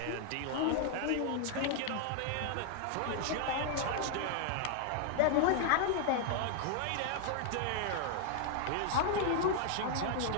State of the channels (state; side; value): different; both; correlation 0.00